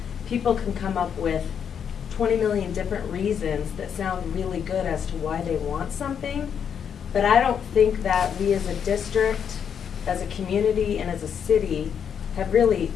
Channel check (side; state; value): right; quieter; 7.8 dB